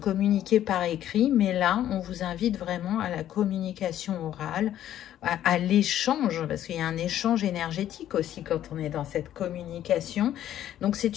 par écrit. Mais là, on vous invite vraiment à la communication orale, à l'échange, parce qu'il y a un échange énergétique aussi quand on est dans cette communication. Donc,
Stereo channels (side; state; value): right; quieter; 11.7 dB